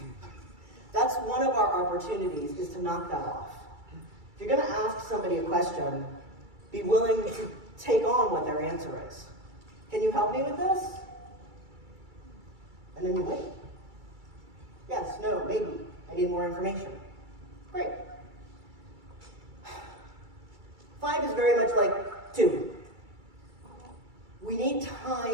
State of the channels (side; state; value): left; late; 2.3 ms